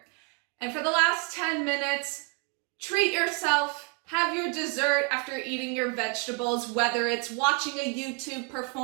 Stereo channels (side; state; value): left; quieter; 36.5 dB